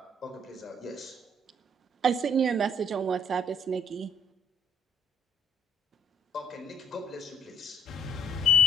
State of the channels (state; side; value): normal; both; correlation 0.62